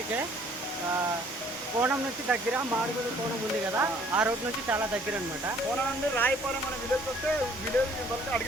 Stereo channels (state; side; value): normal; both; correlation 0.58